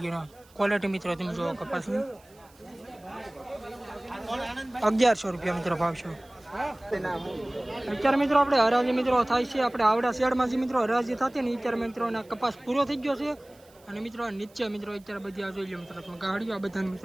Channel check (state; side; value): noise; right; hiss, 29 dB below the sound